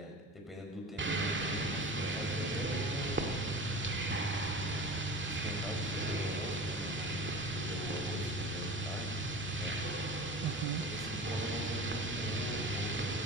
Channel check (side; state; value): both; normal; correlation 0.35